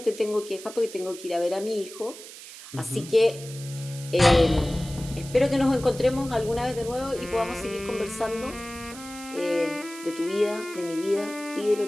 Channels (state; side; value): noise; right; hiss, 15 dB below the sound